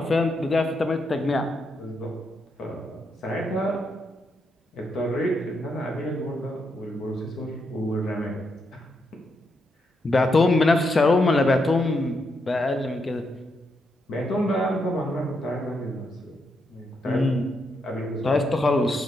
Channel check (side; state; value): both; normal; correlation 0.80